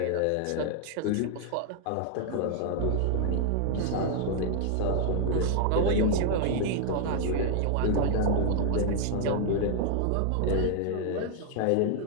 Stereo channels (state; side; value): different; both; correlation 0.00